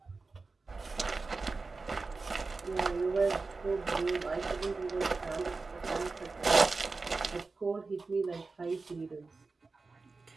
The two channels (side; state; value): left; quieter; 4.0 dB